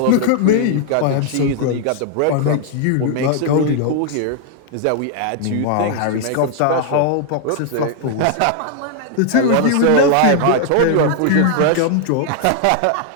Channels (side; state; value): both; different; correlation 0.00